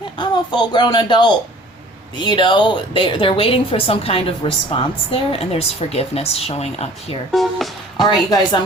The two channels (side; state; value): both; normal; correlation 0.49